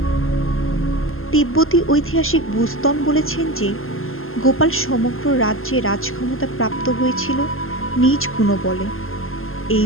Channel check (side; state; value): right; late; 0.61 ms